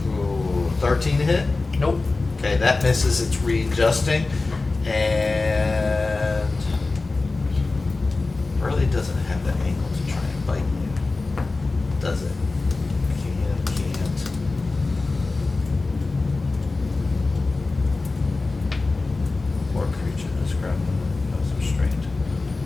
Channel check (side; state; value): right; quieter; 3.6 dB